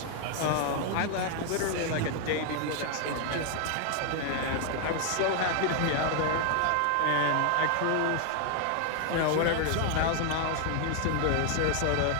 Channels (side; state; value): both; different; correlation 0.00